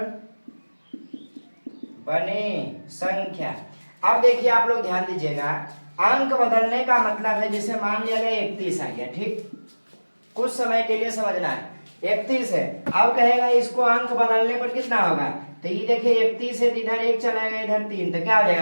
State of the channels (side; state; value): both; inverted; correlation -1.00